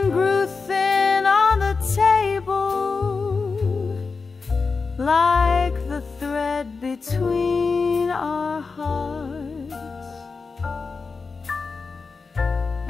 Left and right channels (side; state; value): right; quieter; 4.6 dB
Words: grew thin on the table, like the thread between our hearts,